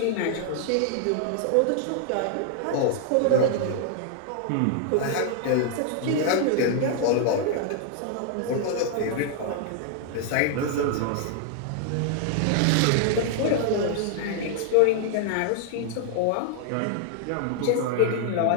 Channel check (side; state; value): both; different; correlation 0.00